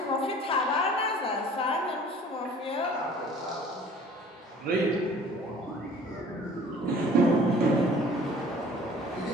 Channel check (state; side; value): normal; both; correlation 0.49